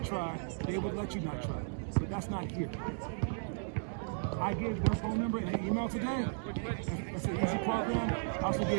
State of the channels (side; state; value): left; silent; 54 dB below the other